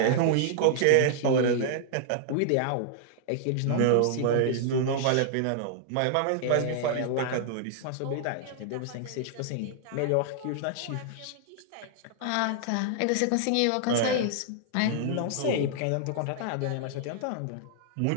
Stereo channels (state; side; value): different; both; correlation -0.01